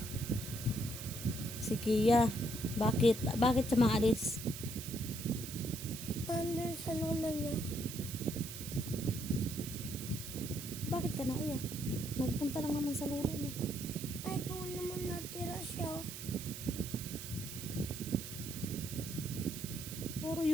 Si Kia. Bakit? Bakit siya maalis? under sa lola niya. Bakit ka naiyak? Nagpunta lang naman sa lula niya. Ay, doon naman natira siya. Puro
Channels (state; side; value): noise; right; hiss, 9 dB below the sound